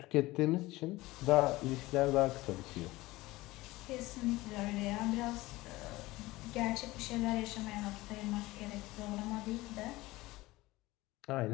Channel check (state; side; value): quieter; right; 19.4 dB